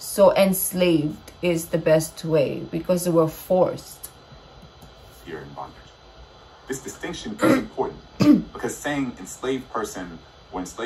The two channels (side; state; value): both; identical; correlation 1.00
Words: enslaved is the best way, because they were forced. Here in bondage. This distinction is important because saying enslaved person or